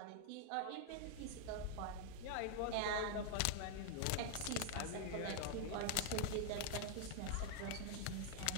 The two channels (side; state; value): both; different; correlation 0.00